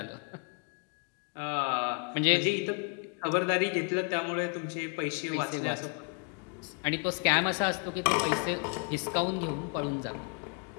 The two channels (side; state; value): right; quieter; 37.1 dB